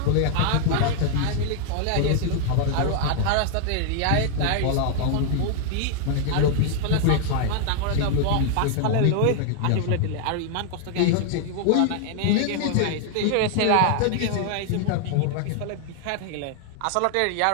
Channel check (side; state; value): both; different; correlation 0.00